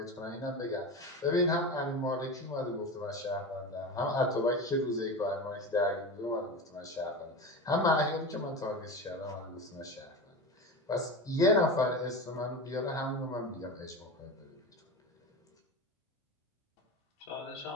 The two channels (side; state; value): both; normal; correlation 0.26